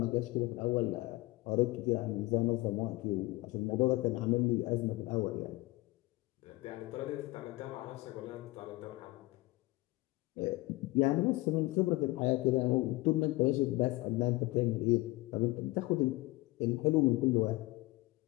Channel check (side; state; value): right; quieter; 21.0 dB